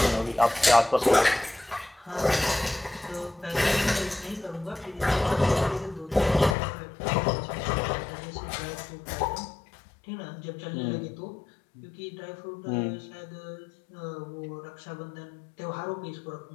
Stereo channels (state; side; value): drops out; right; at 6.6 s